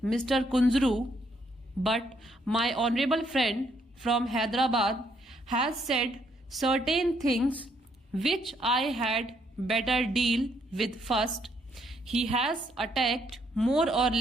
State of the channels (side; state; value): both; normal; correlation 0.71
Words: Mr. Kunzru, but my honorable friend from Hyderabad has said certain things which I had better deal with first. He has attacked more or